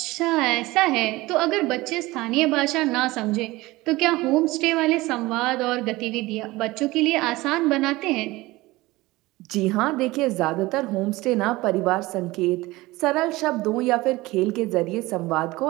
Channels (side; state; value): left; quieter; 19.9 dB